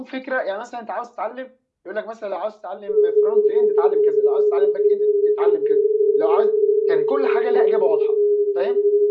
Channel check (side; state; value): both; identical; correlation 1.00